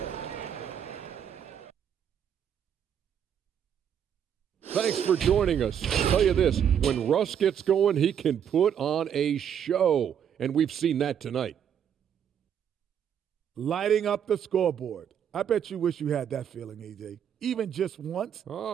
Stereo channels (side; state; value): left; quieter; 8.7 dB